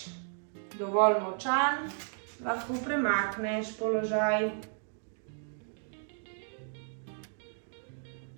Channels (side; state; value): left; silent; digital silence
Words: dovolj močan, lahko premakneš položaj.